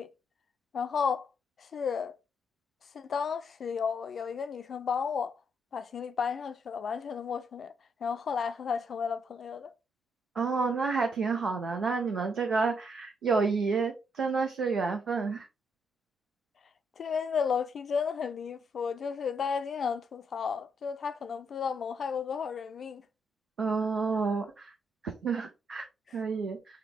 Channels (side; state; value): both; normal; correlation 0.74